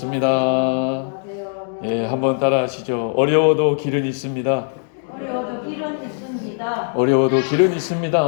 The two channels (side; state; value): right; silent; 66 dB below the other